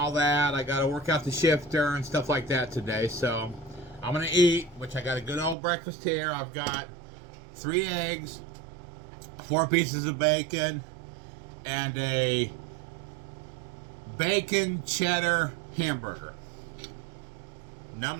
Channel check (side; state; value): left; drops out; at 5.6 s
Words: that. I gotta work out the shifter and stuff like that today. So I'm gonna eat, which I got a good old breakfast here. I've got 3 eggs, 4 pieces of bacon, and a bacon cheddar hamburger.